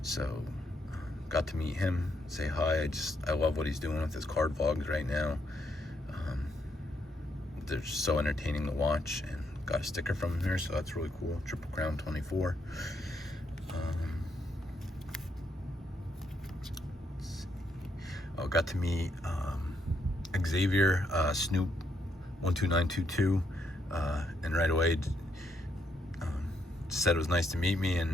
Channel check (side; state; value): both; normal; correlation 0.76